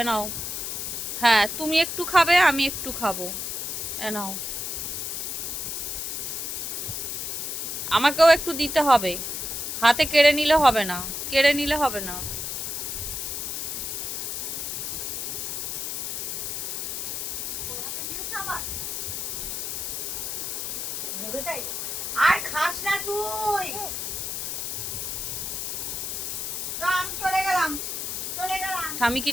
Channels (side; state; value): left; noise; hiss, 3 dB below the sound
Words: এ নাও। হ্যাঁ, তুমি একটু খাবে, আমি একটু খাবো। এ নাও। আমাকেও একটু দিতে হবে। হাতে কেড়ে নিলে হবে না। কেড়ে নিলে হবে না। আর খাস না তুই। আমি চলে গেলাম, চলে গেলাম। ঠামি